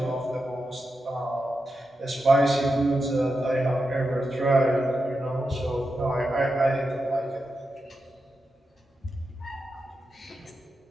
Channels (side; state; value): both; normal; correlation 0.88